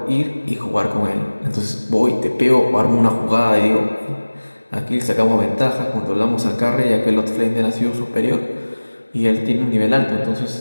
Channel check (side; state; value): both; inverted; correlation -1.00